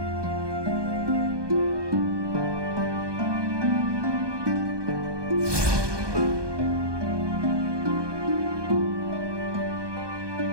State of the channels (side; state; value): left; late; 1.2 ms